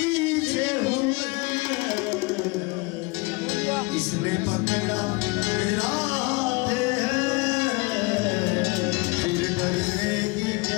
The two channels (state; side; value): quieter; right; 26.4 dB